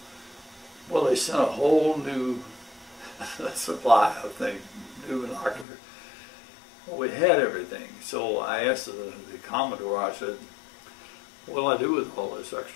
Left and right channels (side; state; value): right; drops out; at 5.7 s